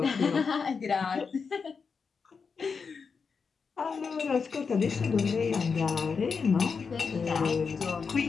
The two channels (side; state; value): right; quieter; 5.4 dB